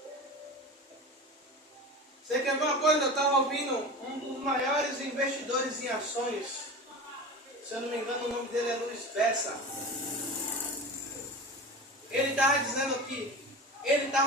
Você quer ver uma coisa? Eu estava ouvindo um dos maiores investidores em ações. Se eu não me engano, o nome dele é Luiz Bessa. Ele estava dizendo que ele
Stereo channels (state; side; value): normal; both; correlation 0.31